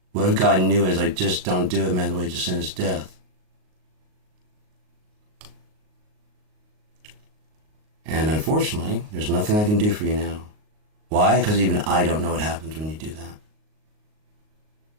What if God knew it? Like, just don't do it, man. The way to sin is death. And unfortunately, there's nothing I can do for you now. Why? Because even I don't know what happens when you do that.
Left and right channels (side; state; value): left; late; 38 ms